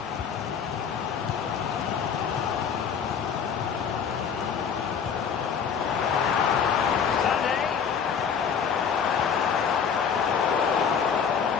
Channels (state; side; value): quieter; right; 7.0 dB